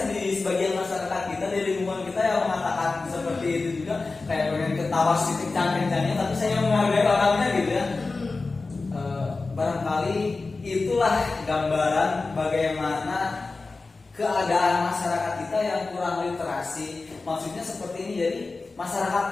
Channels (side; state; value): right; quieter; 3.7 dB